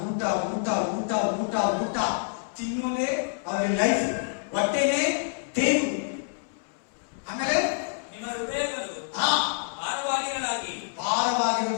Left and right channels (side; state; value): right; silent; 60 dB below the other